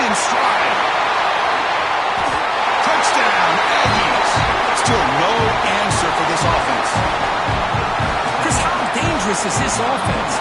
stride. Touchdown, Aggies. Still no answer for this offense. Chris, how dangerous is this offense?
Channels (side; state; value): both; identical; correlation 1.00